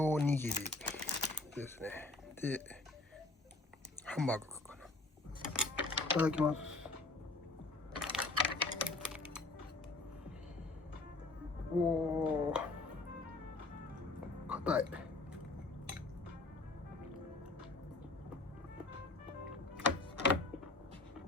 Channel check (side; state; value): right; quieter; 3.2 dB